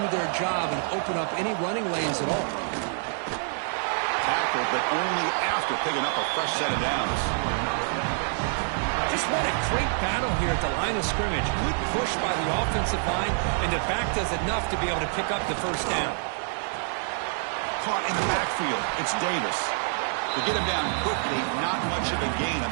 their job and open up any running lanes at all. Tackled, but only after picking up a fresh set of downs. Just what a great battle here at the line of scrimmage. Good push by the offensive line, and the back does enough to be able to pick up the first down. Caught in the backfield. It's Davis. To get him down quickly, not much of a gain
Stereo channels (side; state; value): left; silent; 60 dB below the other